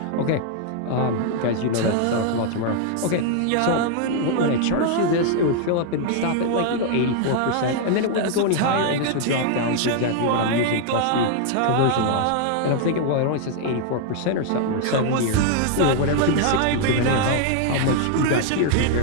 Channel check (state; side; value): different; both; correlation 0.00